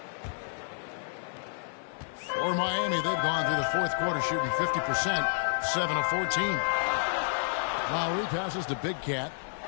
For Miami, they've gone through the fourth quarter shooting 50%, 7 of 14. Lowry passes to Big Cat.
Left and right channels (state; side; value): silent; right; 58 dB below the other